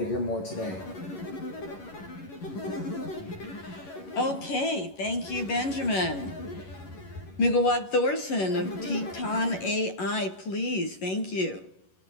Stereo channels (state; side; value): late; right; 11 ms